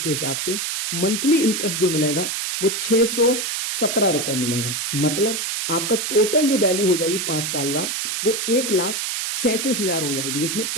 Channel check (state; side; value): noise; right; hiss, 2 dB below the sound